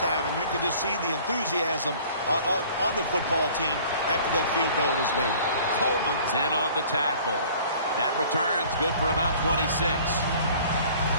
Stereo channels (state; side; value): inverted; both; correlation -0.50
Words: and you can just see the enthusiasm on the football team after that field goal was made. Coleman's in on the tackle. That return's good for about 26.